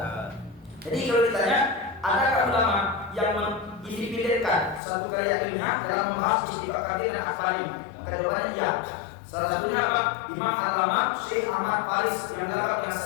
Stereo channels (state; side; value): drops out; right; at 4.8 s